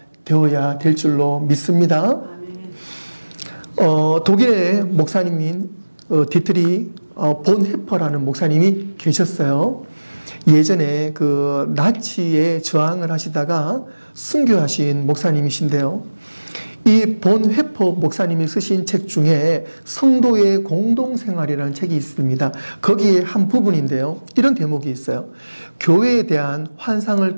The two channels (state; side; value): inverted; both; correlation -1.00